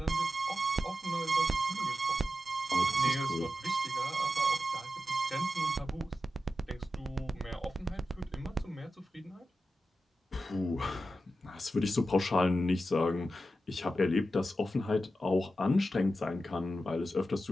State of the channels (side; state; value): both; normal; correlation 0.90